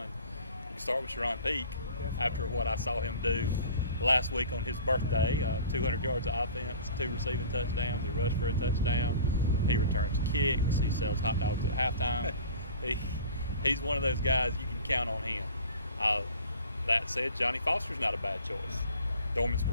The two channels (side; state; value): both; inverted; correlation -0.43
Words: You can start with Sharon Peak. Definitely. After what I saw him do last week on his birthday. 200 yards of offense, 2 receiving touchdowns. He rushed for a touchdown. He returns kicks. He sells hot dogs at halftime. He's one of those guys you can count on him. That said, Johnny Foster's not a bad choice. Dorman's